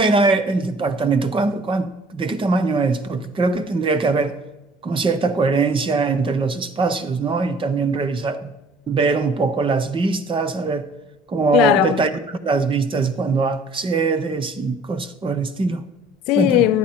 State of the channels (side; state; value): both; normal; correlation 0.53